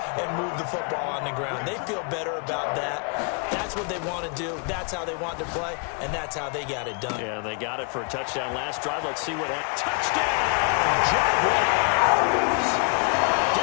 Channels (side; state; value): right; quieter; 37.0 dB